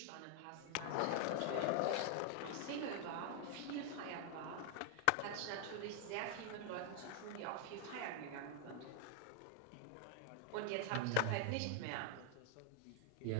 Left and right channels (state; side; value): different; both; correlation 0.00